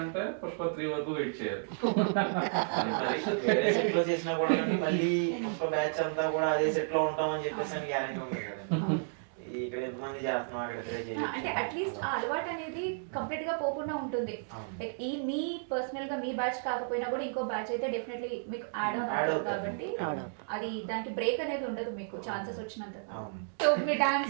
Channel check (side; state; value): left; silent; digital silence